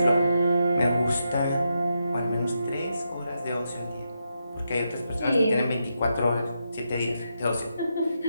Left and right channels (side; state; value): both; inverted; correlation -0.84